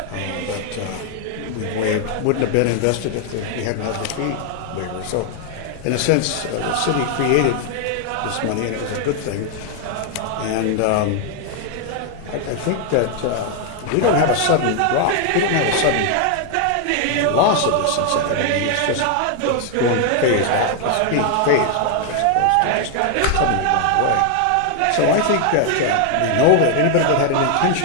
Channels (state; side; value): different; both; correlation 0.00